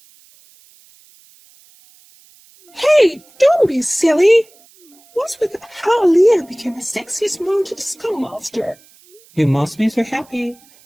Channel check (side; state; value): right; noise; hiss, 29 dB below the sound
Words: Hey, don't be silly. What's with how Aaliyah became the sexiest mounted scum monster? You must be so happy